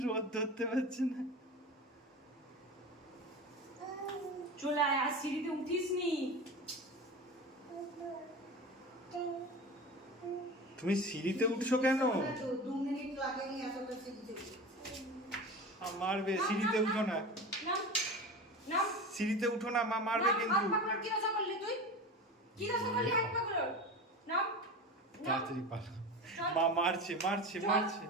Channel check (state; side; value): normal; both; correlation 0.30